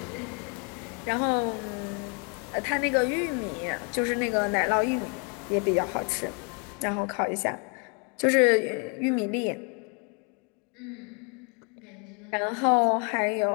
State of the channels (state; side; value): quieter; right; 35.7 dB